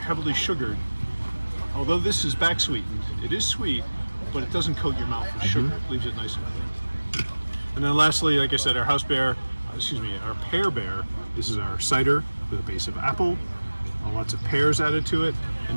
sugared, although this is back sweetened, it is sweet, but it doesn't coat your mouth with sugar. It leaves it nice and clean. And then lastly, like I said, our pear bear. This is our cider with a base of apple, lots of pears added to it,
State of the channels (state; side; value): inverted; both; correlation -1.00